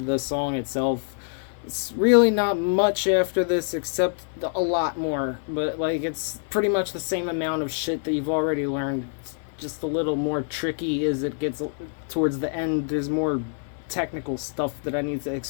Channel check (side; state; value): right; silent; digital silence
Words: the song itself. It's really not much after this except a lot more, but like it's pretty much the same amount of shit that you've already learned. It's just a little more tricky as it gets towards the end. There's more technical stuff that I need to